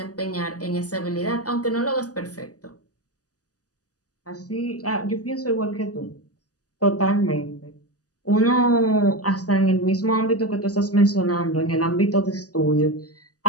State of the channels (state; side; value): late; right; 0.67 ms